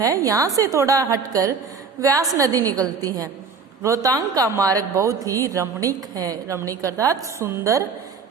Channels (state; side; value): quieter; left; 5.5 dB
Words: यहाँ से थोड़ा हटकर व्यास नदी निकलती है। रोहतांग का मार्ग बहुत ही रमणीक है। रमणीक अर्थात सुंदर